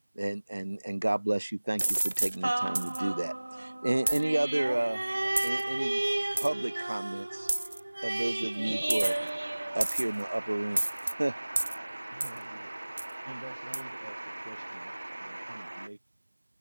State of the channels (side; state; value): both; inverted; correlation -1.00